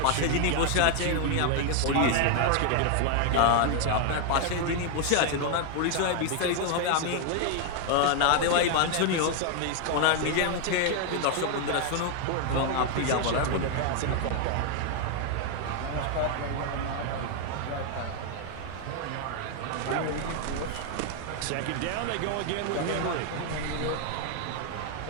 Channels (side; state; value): both; different; correlation 0.00